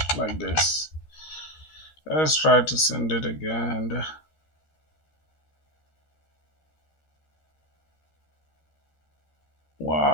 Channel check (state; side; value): late; right; 13 ms